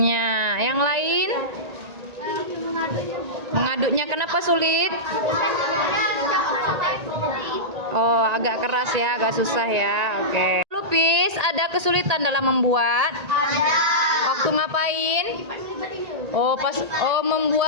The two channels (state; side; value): late; left; 1.8 ms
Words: Yang lain? Mengaduknya kenapa sulit? Oh, agak keras ya, agak susah ya. Oke. Lupis, ada kesulitan dalam membuat? Ada. Waktu ngapain? Oh,